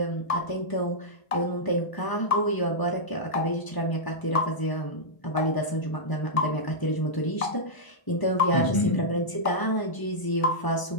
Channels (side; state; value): right; late; 1.0 ms